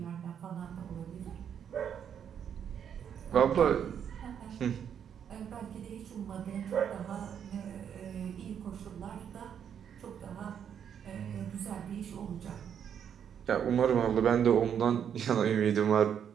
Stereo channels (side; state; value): left; quieter; 8.4 dB